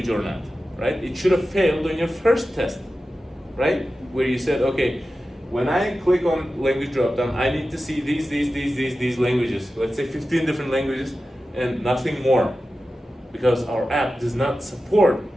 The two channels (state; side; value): normal; both; correlation 0.93